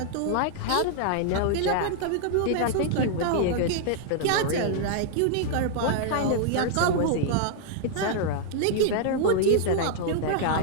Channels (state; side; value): different; both; correlation -0.01